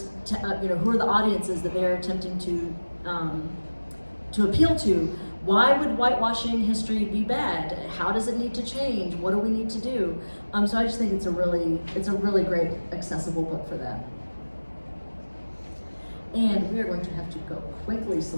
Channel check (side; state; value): both; inverted; correlation -1.00